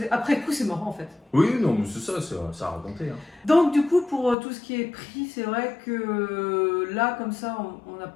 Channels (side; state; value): right; drops out; at 4.4 s